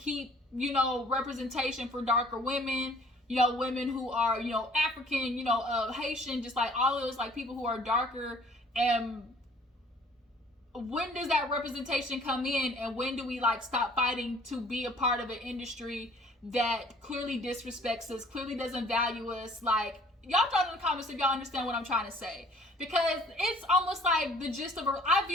representation for darker women, women who are, African, Haitian, just like all of those like people who are darker. And when does that representation come in, and when do we like stop fighting to be a part of an industry that clearly disrespects us, clearly doesn't value us? Like, y'all throw in the comments if y'all understand what I'm trying to say, because it's almost like the gist of I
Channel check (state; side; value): normal; both; correlation 0.55